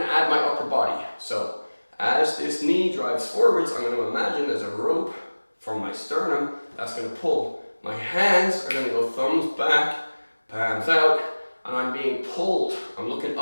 to add my upper body. So as this knee drives forwards, I'm going to imagine there's a rope from my sternum that's going to pull. My hands are going to go thumbs back, palms out, and I'm being pulled. I'm looking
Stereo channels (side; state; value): both; inverted; correlation -1.00